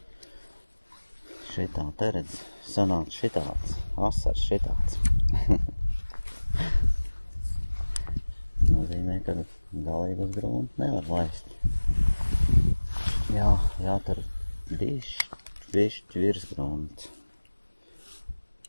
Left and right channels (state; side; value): inverted; both; correlation -1.00